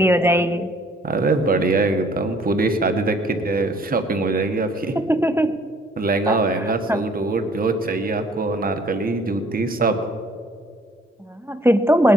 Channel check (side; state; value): both; normal; correlation 0.59